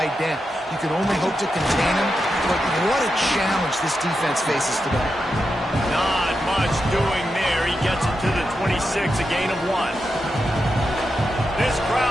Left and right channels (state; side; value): normal; both; correlation 0.87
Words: down. You can only hope to contain him, but what a challenge this defense faces today. Not much doing there. He gets it to the 26, a gain of 1. This